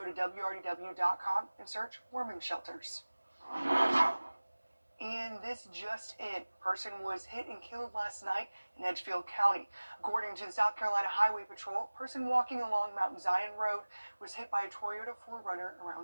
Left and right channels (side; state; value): both; inverted; correlation -1.00